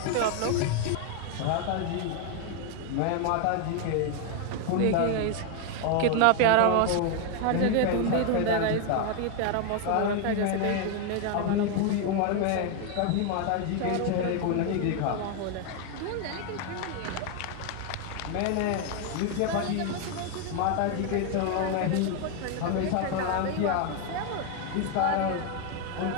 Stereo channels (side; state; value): both; different; correlation 0.01